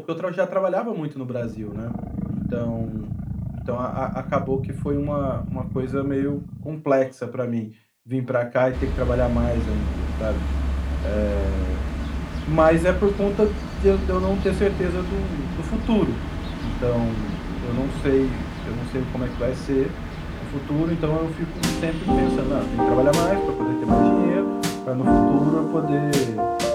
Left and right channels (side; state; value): both; identical; correlation 1.00